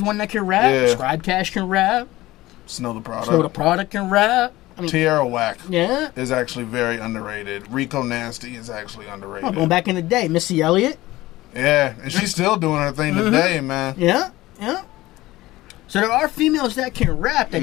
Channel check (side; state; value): right; quieter; 17.8 dB